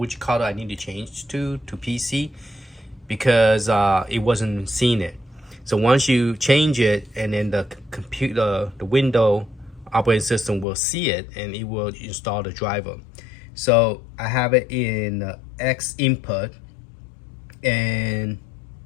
color I need to change to PC because it wasn't seeing it. So once you change it, and then the computer, the window operating system will see it and it will install the driver. So I have it in X input, and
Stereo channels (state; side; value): drops out; right; at 10.7 s